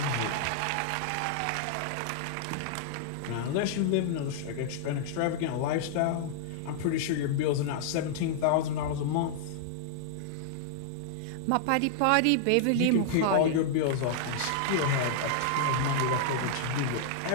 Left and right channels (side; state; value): both; different; correlation -0.01